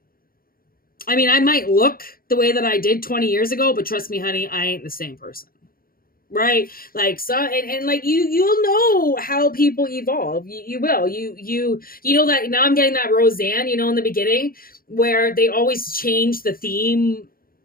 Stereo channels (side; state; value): right; late; 0.42 ms